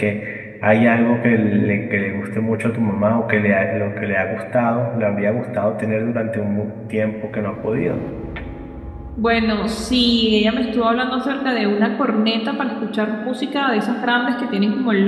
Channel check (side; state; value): both; identical; correlation 1.00